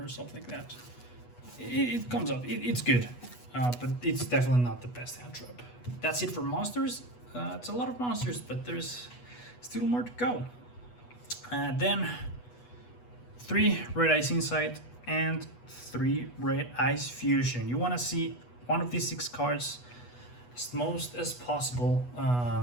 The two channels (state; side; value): late; right; 8.2 ms